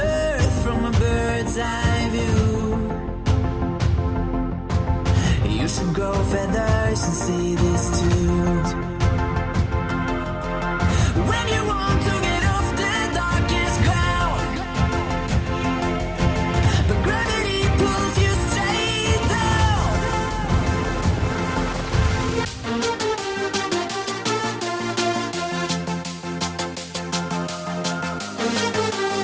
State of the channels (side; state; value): both; identical; correlation 1.00